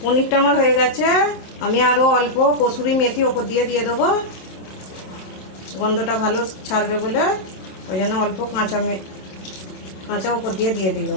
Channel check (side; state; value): right; late; 27 ms